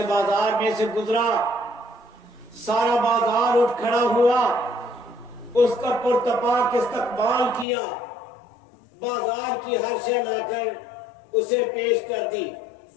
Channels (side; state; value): right; drops out; at 7.7 s